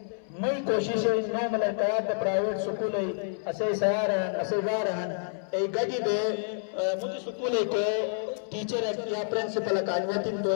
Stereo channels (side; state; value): right; silent; 59 dB below the other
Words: مئی کوشش ہے نو ملکات پرائیویٹ سکول ہے اسے سیار ہیں اسے گار ہیں ایک گڑی دے مجھے سکول ہے کہ ٹیچر یا پرنسپل اکانویتی تو